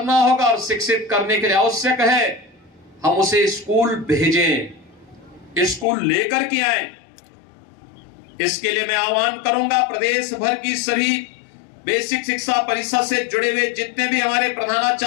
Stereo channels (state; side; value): drops out; right; at 5.9 s